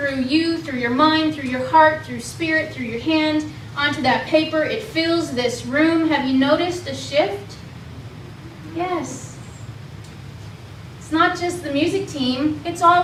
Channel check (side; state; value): both; identical; correlation 1.00